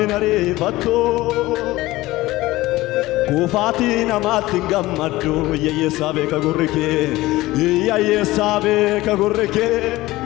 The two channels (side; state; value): right; quieter; 18.3 dB